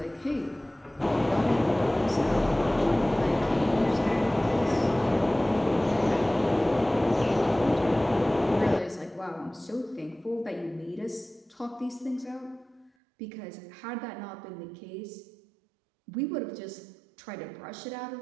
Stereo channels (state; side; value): drops out; left; at 12.9 s